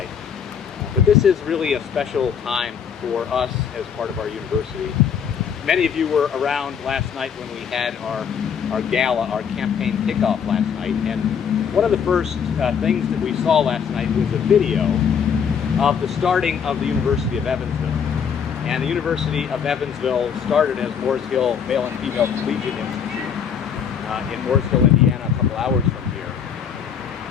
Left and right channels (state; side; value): quieter; right; 7.3 dB